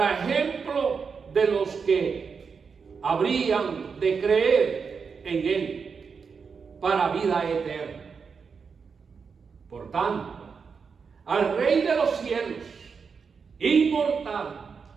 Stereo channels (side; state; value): left; quieter; 5.7 dB